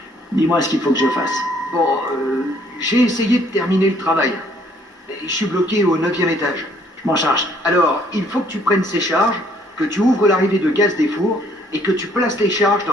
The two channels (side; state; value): both; normal; correlation 0.63